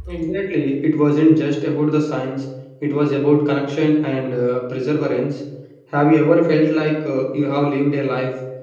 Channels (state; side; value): identical; both; correlation 1.00